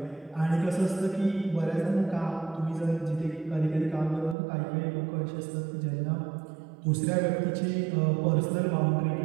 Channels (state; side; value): drops out; left; at 4.4 s